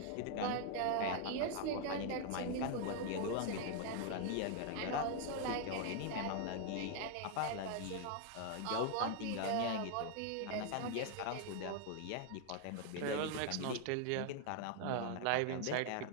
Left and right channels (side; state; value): both; different; correlation 0.00